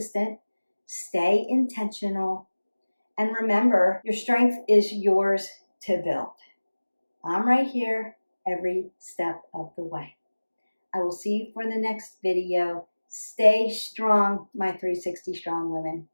stay intentional, and remember, your strength is yours to build. I'm right here every step of the way. I will see you for the next video. Stay strong, my 360 strong women.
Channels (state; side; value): inverted; both; correlation -1.00